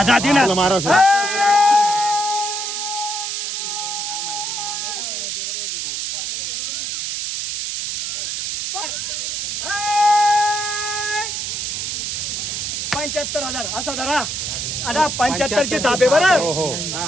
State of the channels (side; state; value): right; noise; hiss, 3 dB below the sound